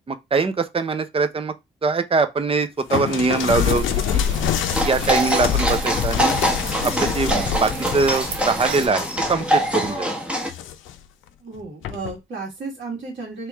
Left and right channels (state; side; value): normal; both; correlation 0.42